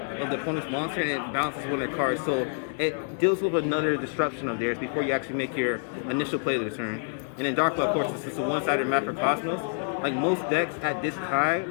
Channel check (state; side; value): silent; right; 60 dB below the other